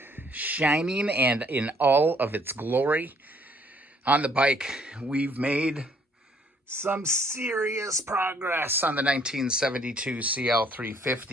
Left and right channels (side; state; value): both; normal; correlation 0.63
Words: Shining and in all of its glory. On the bike, we've made some serious progress on the 1972